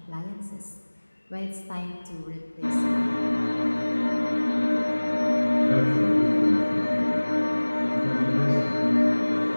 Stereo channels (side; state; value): both; inverted; correlation -1.00